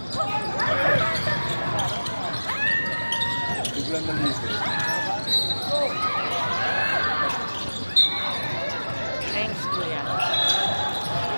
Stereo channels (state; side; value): inverted; both; correlation -1.00